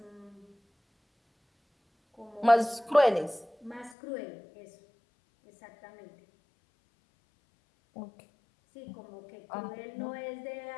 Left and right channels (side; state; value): right; drops out; at 4.0 s